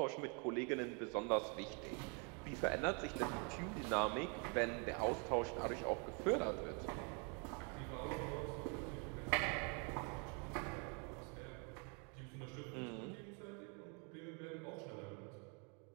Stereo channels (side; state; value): left; quieter; 36.1 dB